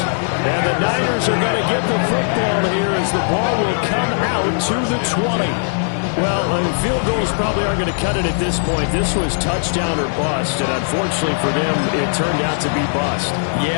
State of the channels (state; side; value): silent; right; digital silence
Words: And the Niners are going to get the football here as the ball will come out to the 20. Well, field goals probably aren't going to cut it at this point. This was touchdown or bust, and unfortunately for them, it turned out to be bust.